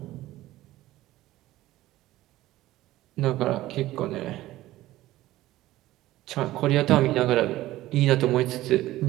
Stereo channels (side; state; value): left; quieter; 16.0 dB